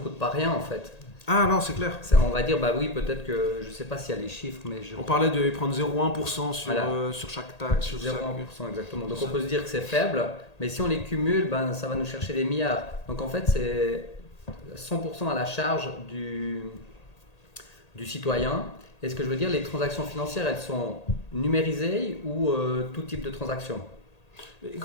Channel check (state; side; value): late; right; 1.8 ms